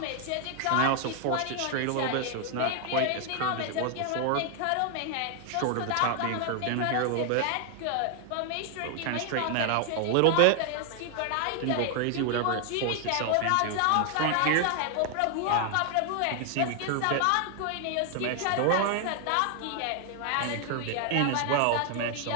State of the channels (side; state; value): both; different; correlation 0.00